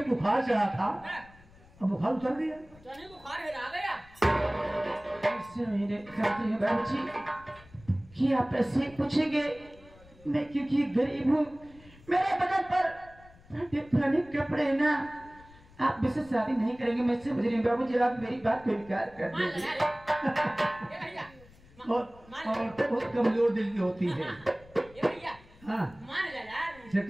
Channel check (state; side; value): noise; left; rumble, 24 dB below the sound